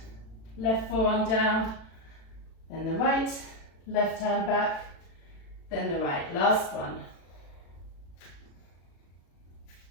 Left forearm down, then the right, left hand back, then the right. Last one.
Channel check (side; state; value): right; late; 36 ms